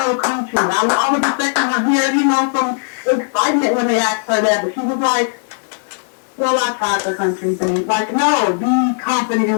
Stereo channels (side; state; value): right; silent; 67 dB below the other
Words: love country. I was expecting her to hear, some excitement when they asked her that. But she was like, well, I tried the country thing. Like, no, be confident in